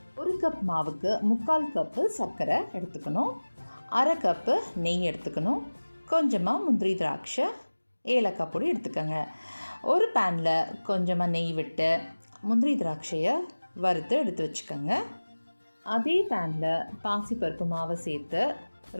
1 கப் மாவுக்கு 3/4 கப்பு சர்க்கரை எடுத்துக்கணும். 1/2 கப்பு நெய் எடுத்துக்கணும். கொஞ்சமாக முந்திரி திராட்சை ஏலக்காய் பொடி எடுத்துக்கோங்க. ஒரு பேனில் கொஞ்சமாக நெய் விட்டு முந்திரி திராட்சையை வறுத்து எடுத்து வச்சுக்கோங்க. அதே பேனில் பாசிப்பருப்பு மாவை சேர்த்து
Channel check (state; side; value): inverted; both; correlation -1.00